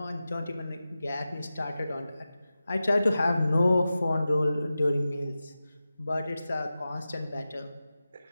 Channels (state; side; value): inverted; both; correlation -0.94